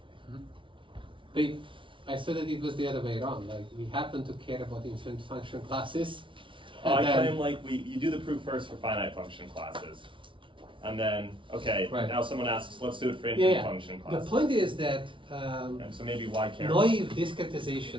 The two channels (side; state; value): left; late; 0.25 ms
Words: I said that it was the other way around, like we happen to care about infinite function classes Oh, I And then- claim like you do the proof first for finite function classes. And then, okay, Right. now someone asks, let's do it for Yeah, infinite yeah. function The classes. point is that And so maybe why care? naive